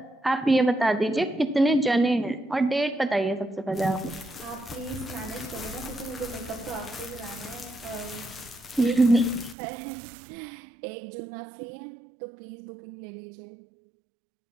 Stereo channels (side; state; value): left; drops out; at 9.6 s